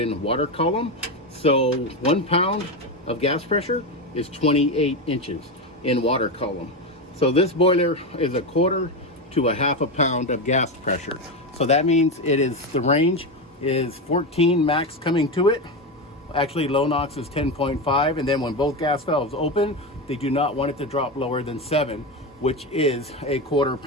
water column. So 1 pound of gas pressure is 28 inches in water column. So this boiler is 1/4 to 1/2 pound of gas pressure. So that means the range is 14 max coming to it. Actually, low NOx is 10.5, and then when both gas valves open, they do not want it to drop lower than 7, which is 1/4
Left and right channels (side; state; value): both; normal; correlation 0.15